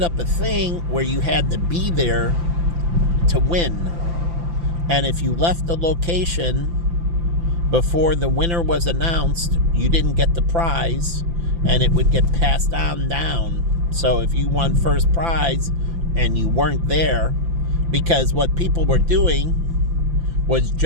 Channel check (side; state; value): left; late; 5.9 ms